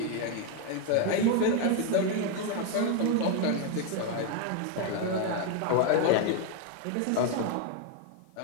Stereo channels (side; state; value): both; different; correlation 0.01